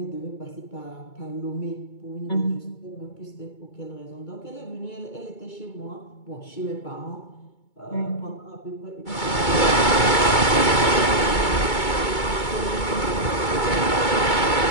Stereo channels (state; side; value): late; right; 2.2 ms